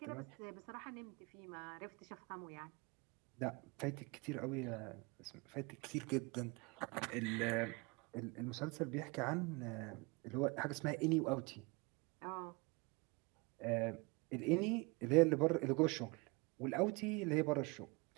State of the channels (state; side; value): quieter; left; 27.6 dB